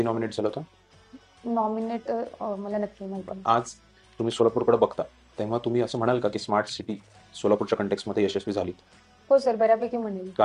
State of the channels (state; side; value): identical; both; correlation 1.00